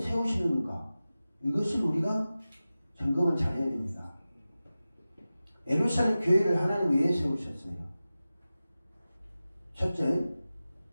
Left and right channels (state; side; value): inverted; both; correlation -0.95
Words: 세우시는가? 이것을 우리가 점검을 잘 해야 됩니다. 예루살렘 교회를 하나님 왜 세우셨어요? 첫째,